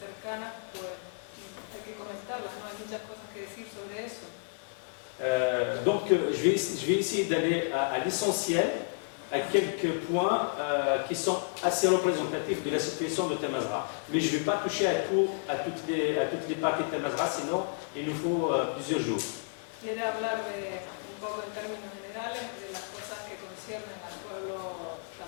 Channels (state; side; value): silent; right; digital silence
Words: pues hay que comentarlas, ¿no? Hay muchas cosas que decir sobre eso. Donc je vais essayer d'aller à l'essentiel, à quelques points qui sont assez représentatifs de la situation de Tamazra. Mais je ne vais pas toucher à toutes les parties de Tamazra, sinon il nous faut plusieurs jours. Quiere hablar un poco en términos generales de las cosas que conciernen al pueblo